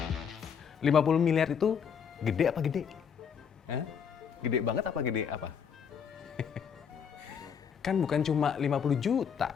$50 miliar itu gede apa gede? Hah? Gede banget apa gede apa? Kan bukan cuma 50 juta,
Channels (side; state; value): right; quieter; 7.2 dB